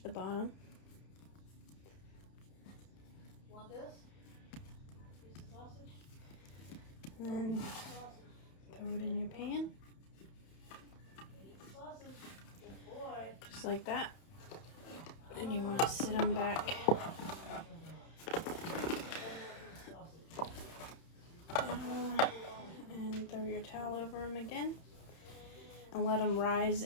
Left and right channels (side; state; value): right; late; 31 ms